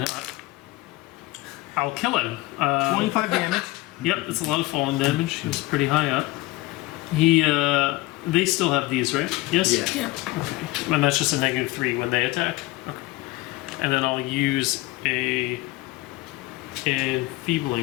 I'll kill him. 25 damage. Yep, it's a lot of falling damage. He was pretty high up. They still have these, right? Yes? Yeah. Yeah. Okay. And that's just a -3 when they attack? Okay. And then I'll use a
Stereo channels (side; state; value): right; quieter; 19.5 dB